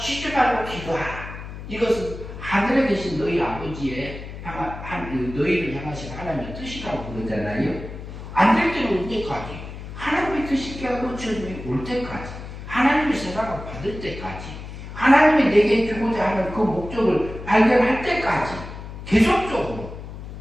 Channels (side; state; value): left; noise; hum, 11 dB below the sound